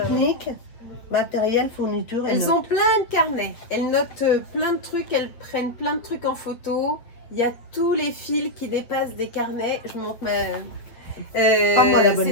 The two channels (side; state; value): right; late; 8.3 ms